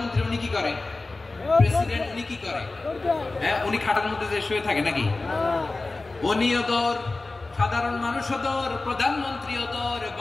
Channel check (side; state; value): right; quieter; 3.4 dB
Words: উনি কি করে? প্রেসিডেন্ট উনি কি করে? হ্যাঁ, উনি খাটের মধ্যে যে শুয়ে থাকে নাকি? উনিও দৌড়, সাধারণ মানুষও দৌড়, প্রধানমন্ত্রীও দৌড়,